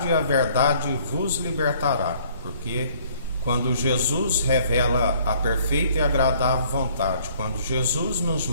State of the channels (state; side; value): inverted; both; correlation -0.59